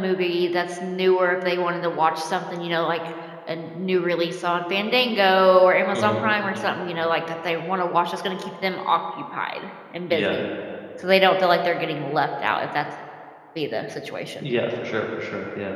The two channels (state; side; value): identical; both; correlation 1.00